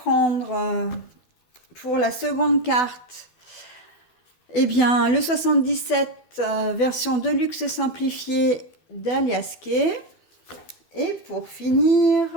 pour la seconde carte, eh bien, le 77 version Deluxe simplifiée d'Aliaské. Et pour finir,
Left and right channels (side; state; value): right; late; 12 ms